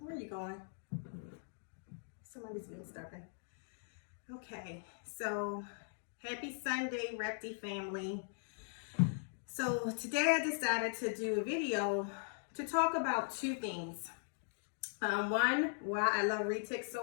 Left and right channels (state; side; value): silent; right; digital silence